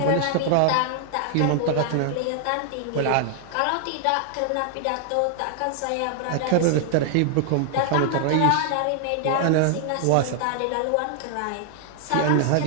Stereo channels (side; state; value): both; different; correlation -0.01